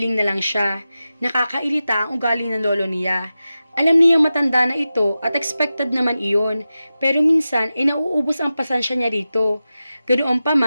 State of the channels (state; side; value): inverted; both; correlation -0.93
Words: na lang siya. Nakakailita ang ugali ng lolo niya. Alam niyang matanda na ito at expected naman iyon, pero minsan ay nauubos ang pasensya niya rito. Ganoon pa